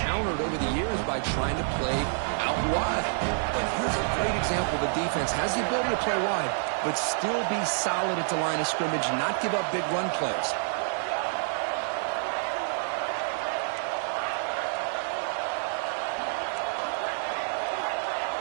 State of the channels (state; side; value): silent; left; digital silence